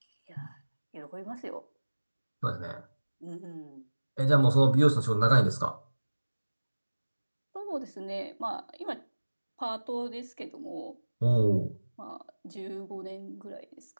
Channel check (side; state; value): both; inverted; correlation -1.00